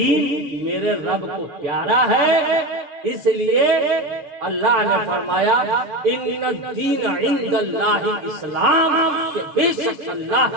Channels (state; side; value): late; left; 6.8 ms